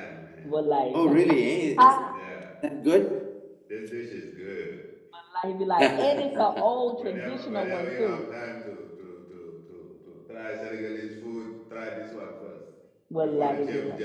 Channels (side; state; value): both; identical; correlation 1.00